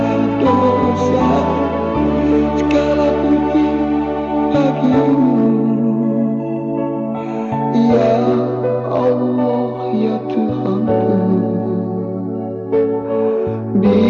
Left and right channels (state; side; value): identical; both; correlation 1.00